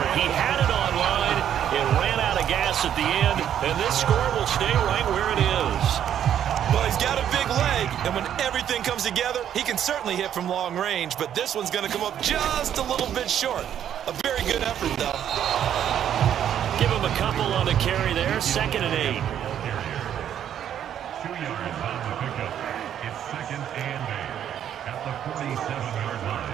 He had it on line. It ran out of gas at the end. And this score will stay right where it is. Well, he's got a big leg, and when everything comes together, he can certainly hit from long range, but this one's going to come up just a little bit short. A very good effort, though. Give him a couple on the carry there. 2nd and 8. 2 yards on the pickup. It's 2nd and 8 at the 47-yard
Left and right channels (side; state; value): left; quieter; 9.9 dB